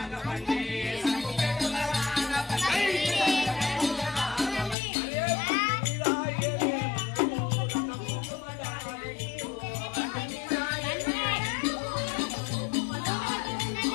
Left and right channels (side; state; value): right; drops out; at 4.8 s